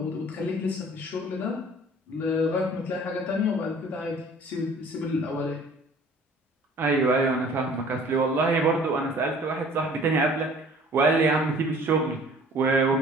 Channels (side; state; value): both; normal; correlation 0.51